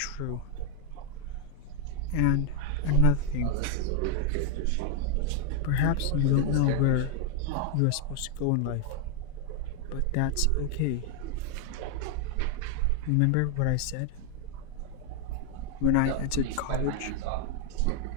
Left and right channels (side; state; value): both; different; correlation 0.01